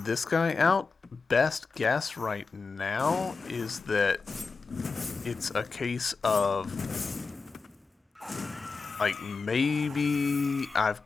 this guy out. Best guess right now is that it's a case of... like, maybe I've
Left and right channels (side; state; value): right; quieter; 4.5 dB